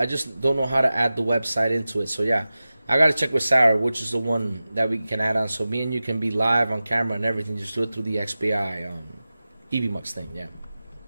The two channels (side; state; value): both; inverted; correlation -0.95